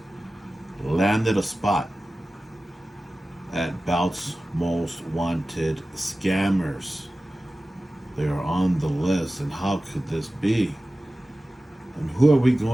landed a spot at Bout's most wanted scammers. They are on the list, and how could this be? And who are we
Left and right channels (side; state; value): both; normal; correlation 0.96